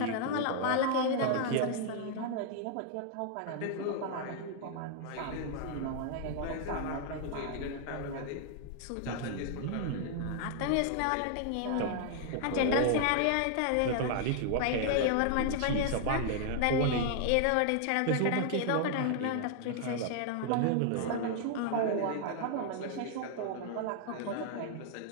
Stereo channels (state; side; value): different; both; correlation 0.00